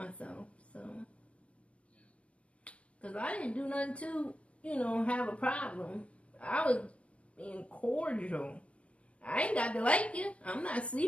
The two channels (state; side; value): late; right; 0.062 ms